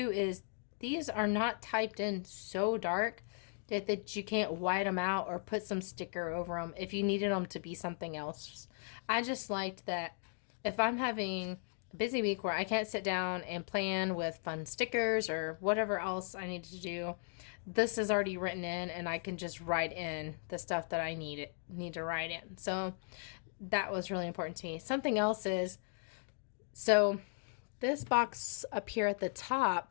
is these are not typed in so dark that you can't white them out or put some sticker over them if you needed them to be something else. I just liked that if I'm having a busy week where I can't sit down and plan with fun stickers or whatever else I need to do, this is already written in, and I can just write in the stuff that I need to write in. So that was really important to me. Something else is, so this box up here at the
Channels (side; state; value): right; silent; 53 dB below the other